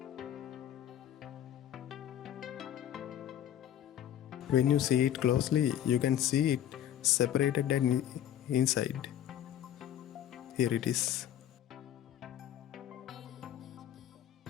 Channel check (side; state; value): right; quieter; 10.9 dB